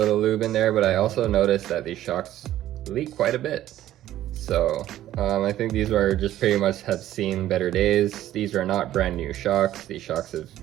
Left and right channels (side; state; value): left; quieter; 13.2 dB